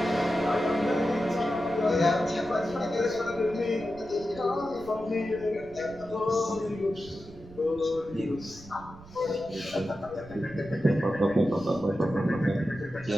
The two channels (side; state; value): right; noise; rumble, 19 dB below the sound